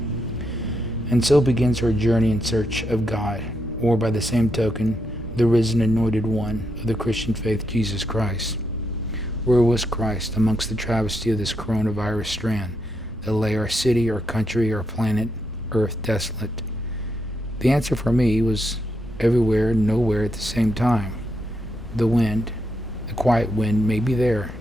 And so begins our journey in search of God, or by the same token, the risen anointed one of the Christian faith, Jesus Christ. Where was Christ amongst the travesty of this coronavirus strand that lay our city, our country, our planet, Earth desolate? The answer for me was everywhere and nowhere at the same time. The wind, the quiet wind, may be there.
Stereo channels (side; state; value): both; normal; correlation 0.80